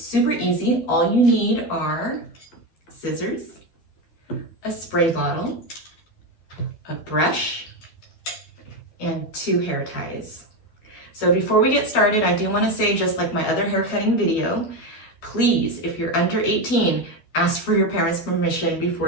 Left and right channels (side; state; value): right; late; 12 ms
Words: super easy. All you need are scissors, a spray bottle, a brush, and 2 hair ties. So before we get started, I do want to say, just like my other hair cutting video, please, if you're under 18, ask for your parents' permission